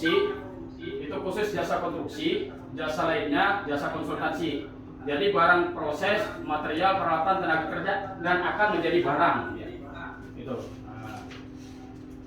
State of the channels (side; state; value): both; identical; correlation 1.00